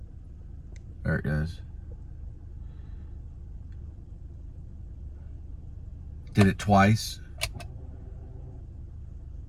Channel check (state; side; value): identical; both; correlation 1.00